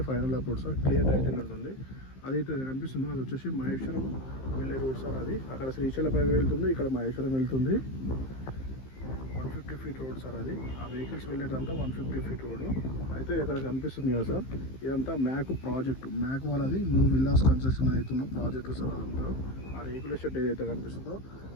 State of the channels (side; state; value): right; late; 15 ms